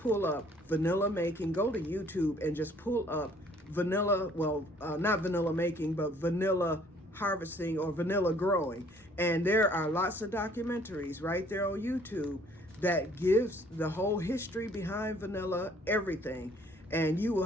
up vanilla making. Go to YouTube and just pull up vanilla, not vanilla making, but vanilla harvesting or vanilla growing. And there are lots of documentaries right there on YouTube that gives the whole history behind vanilla, everything. And you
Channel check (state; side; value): normal; both; correlation 0.59